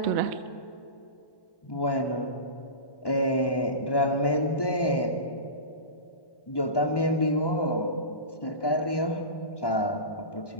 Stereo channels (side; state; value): right; late; 1.1 ms